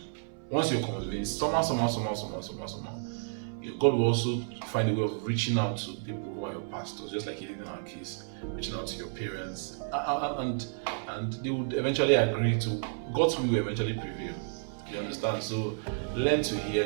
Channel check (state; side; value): silent; left; 57 dB below the other